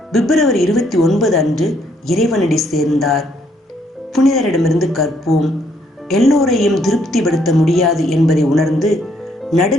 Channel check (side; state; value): both; normal; correlation 0.70